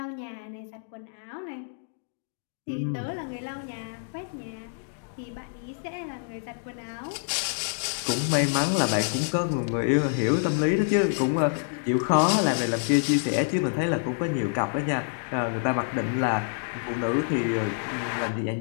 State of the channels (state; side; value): silent; right; digital silence